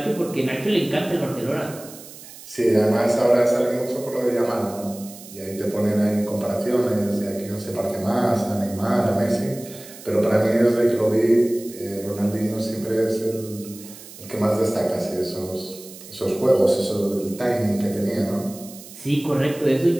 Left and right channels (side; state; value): right; noise; hiss, 17 dB below the sound